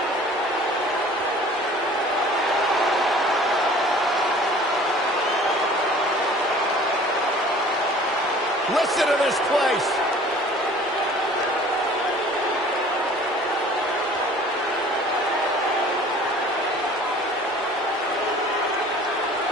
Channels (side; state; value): both; normal; correlation 0.48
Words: Listen to this place.